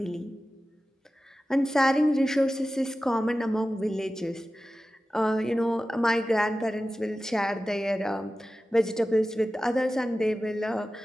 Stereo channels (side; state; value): both; normal; correlation 0.95